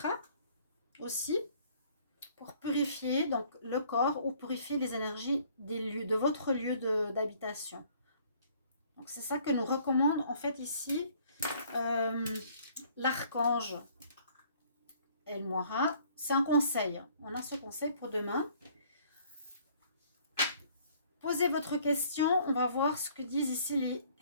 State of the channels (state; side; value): inverted; both; correlation -0.58